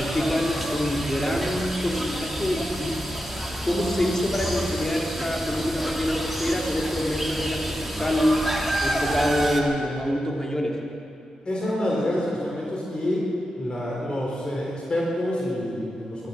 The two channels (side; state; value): both; normal; correlation 0.89